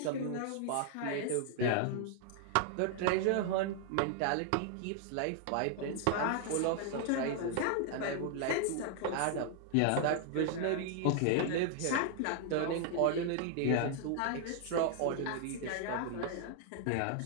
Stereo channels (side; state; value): both; different; correlation 0.00